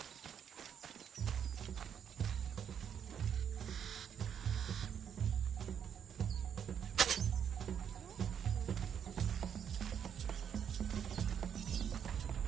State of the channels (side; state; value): left; quieter; 8.3 dB